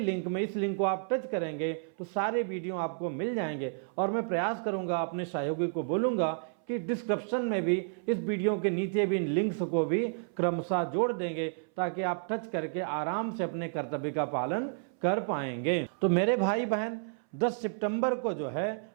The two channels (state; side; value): silent; left; 57 dB below the other